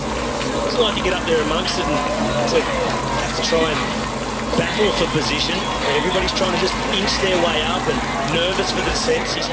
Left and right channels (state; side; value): identical; both; correlation 1.00